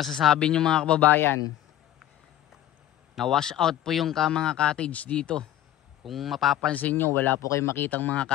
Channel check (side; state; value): right; quieter; 12.3 dB